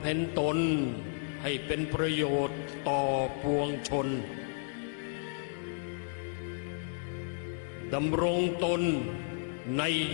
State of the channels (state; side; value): silent; right; digital silence